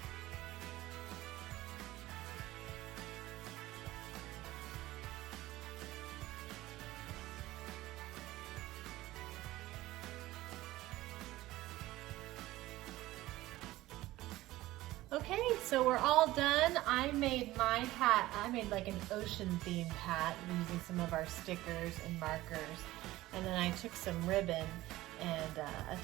Okay, so we're all done. I made my hat, I made like an ocean themed hat using some of our stickers and markers. And then I took some ribbon and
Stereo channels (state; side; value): quieter; left; 17.0 dB